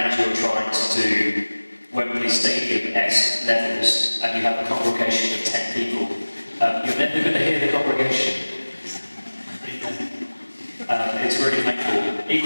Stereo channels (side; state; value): both; inverted; correlation -1.00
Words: you're trying to do Wembley Stadium-esque levels, and you have a congregation of 10 people, you're never going to hear the congregation. It's really painful.